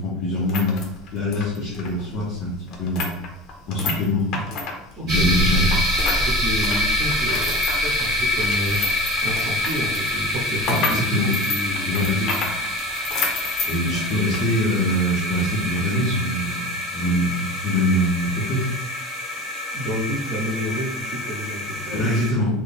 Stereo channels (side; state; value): both; normal; correlation 0.32